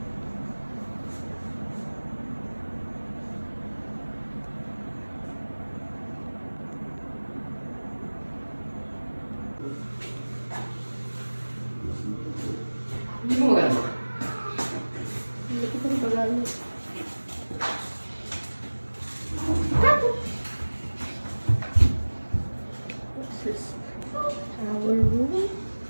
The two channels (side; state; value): both; inverted; correlation -1.00